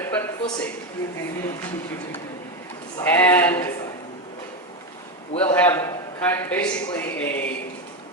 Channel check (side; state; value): both; normal; correlation 0.13